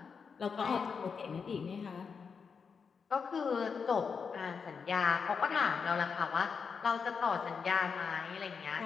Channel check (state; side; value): quieter; right; 5.8 dB